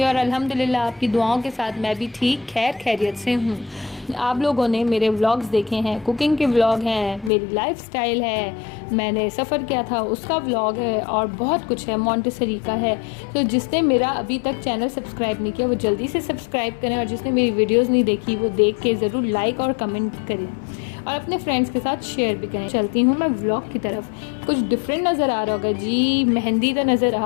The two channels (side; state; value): right; drops out; at 7.3 s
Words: और अल्हम्दुलिल्लाह आपकी दुआओं के साथ मैं भी ठीक खैरियत से हूँ। आप लोगों ने मेरे व्लॉग्स देखे हैं, कुकिंग के व्लॉग हैं, मेरी लाइफस्टाइल है, मैंने सफ़र किया था उसका व्लॉग है और बहुत कुछ है, मॉन्टेसरी का है। तो जिसने मेरा अभी तक चैनल सब्सक्राइब नहीं किया वो जल्दी से सब्सक्राइब करें और जिसने मेरी वीडियोस नहीं देखी वो देख के ज़रूर लाइक और कमेंट करें और अपने फ्रेंड्स के साथ शेयर भी करें। चलती हूँ मैं व्लॉग की तरफ। कुछ डिफरेंट नज़र आ रहा होगा जी, मेहंदी तो नज़र